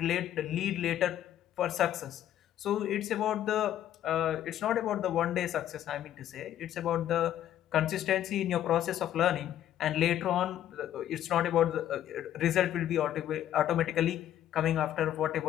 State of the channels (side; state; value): right; quieter; 11.5 dB